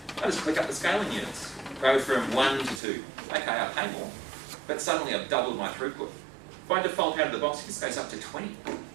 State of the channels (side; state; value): left; drops out; at 2.8 s